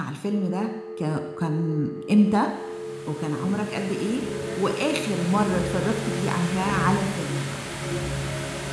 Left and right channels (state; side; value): identical; both; correlation 1.00